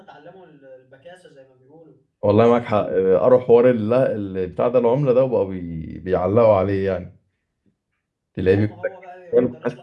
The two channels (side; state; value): both; identical; correlation 1.00